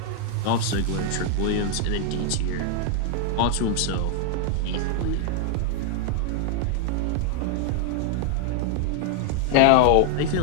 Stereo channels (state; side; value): different; both; correlation 0.00